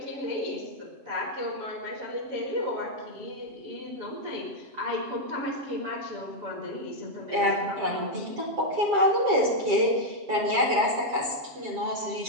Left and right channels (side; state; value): left; late; 7.4 ms